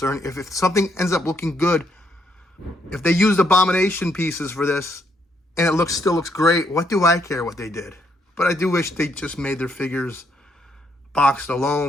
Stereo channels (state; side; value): normal; both; correlation 0.74